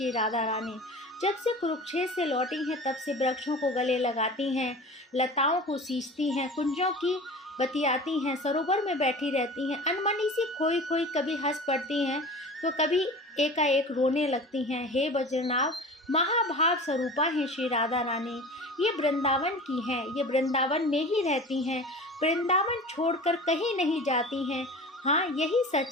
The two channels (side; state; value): both; normal; correlation 0.37